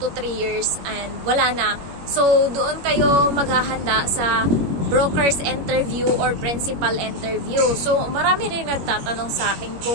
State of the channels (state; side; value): late; left; 21 ms